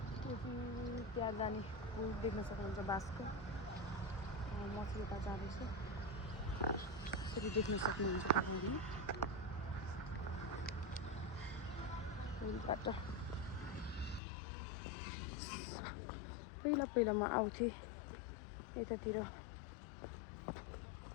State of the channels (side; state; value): right; drops out; at 14.2 s